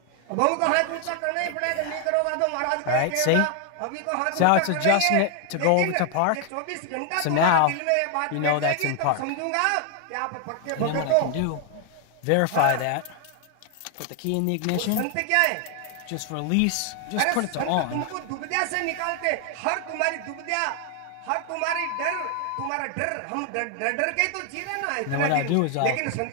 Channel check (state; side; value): different; both; correlation 0.00